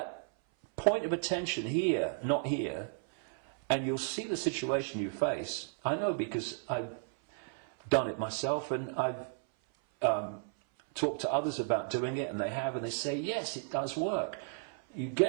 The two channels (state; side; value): silent; left; 55 dB below the other